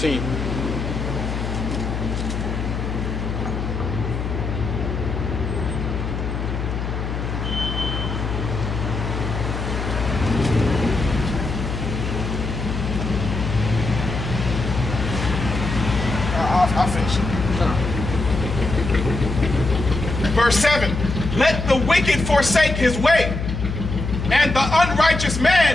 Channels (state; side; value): noise; left; hum, 4 dB below the sound